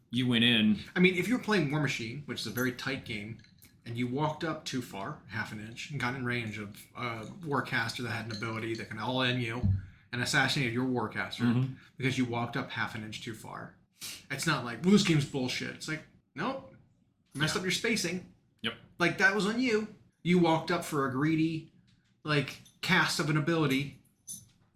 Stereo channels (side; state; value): both; identical; correlation 1.00